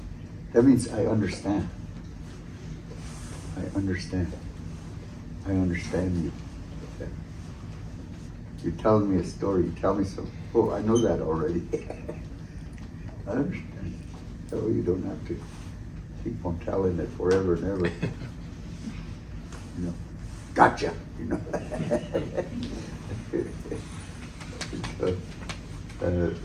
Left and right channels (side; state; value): both; identical; correlation 1.00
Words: That means I understand. I understand. I understand you. You're telling me a story. You tell me something. Oh, I know that already. I understand. So you don't have to keep on telling it forever and ever. Gotcha.